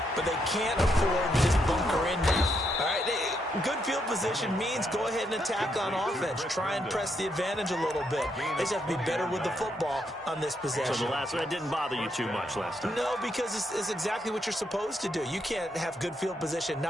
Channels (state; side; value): normal; both; correlation 0.78